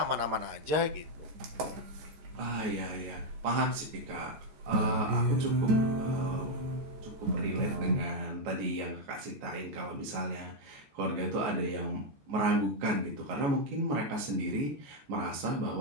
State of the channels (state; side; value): late; left; 14 ms